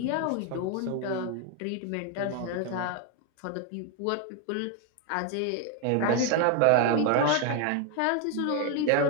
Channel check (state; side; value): different; both; correlation 0.01